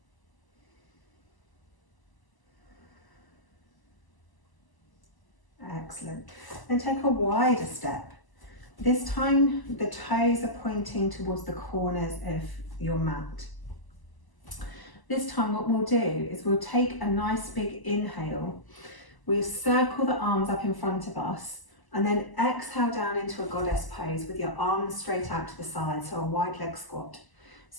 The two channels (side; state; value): right; late; 1.0 ms